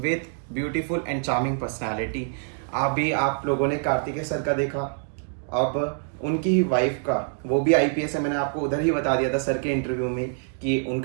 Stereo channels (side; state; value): left; silent; digital silence